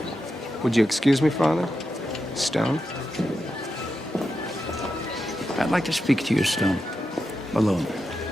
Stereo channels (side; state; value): both; normal; correlation 0.88